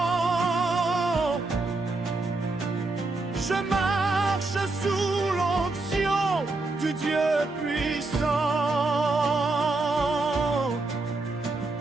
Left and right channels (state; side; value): quieter; left; 3.3 dB